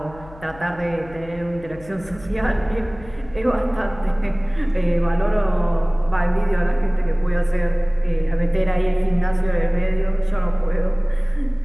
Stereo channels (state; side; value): noise; left; hum, 20 dB below the sound